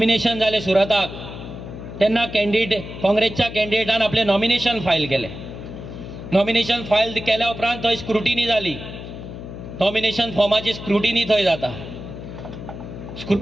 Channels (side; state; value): left; noise; hum, 11 dB below the sound